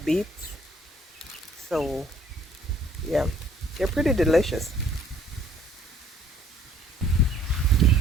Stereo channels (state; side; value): normal; both; correlation 0.58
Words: beets. So yeah, they're pretty delicious.